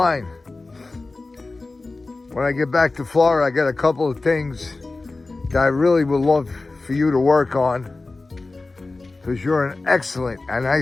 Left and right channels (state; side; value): quieter; right; 3.4 dB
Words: When I get back to Florida, I got a couple of things that I really would love for you to work on. Because you're an excellent, and